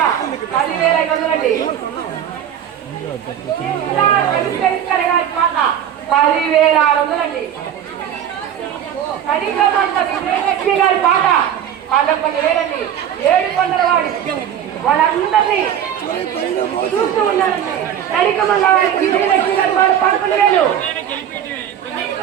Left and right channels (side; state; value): left; quieter; 9.7 dB